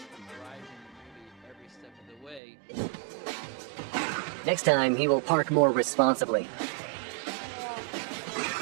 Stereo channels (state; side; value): drops out; left; at 2.4 s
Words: Next time, he will park more responsibly.